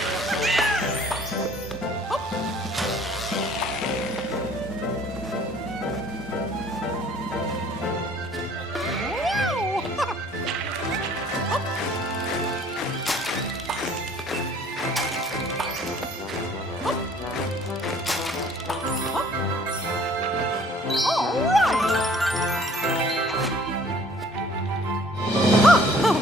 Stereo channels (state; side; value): normal; both; correlation 0.55